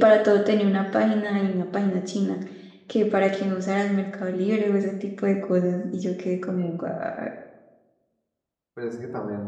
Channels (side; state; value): both; identical; correlation 1.00